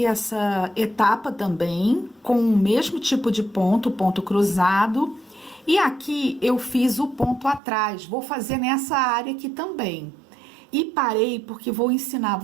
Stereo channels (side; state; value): left; drops out; at 7.6 s